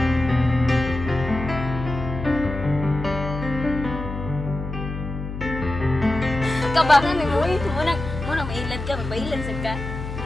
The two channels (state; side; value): noise; left; hum, 7 dB below the sound